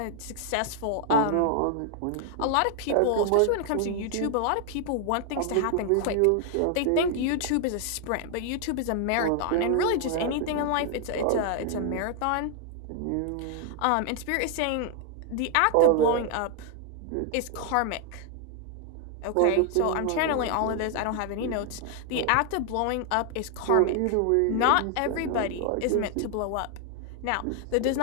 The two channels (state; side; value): different; both; correlation 0.00